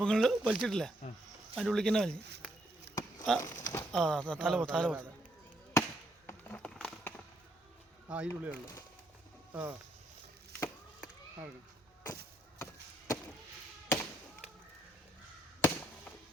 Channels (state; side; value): normal; both; correlation 0.73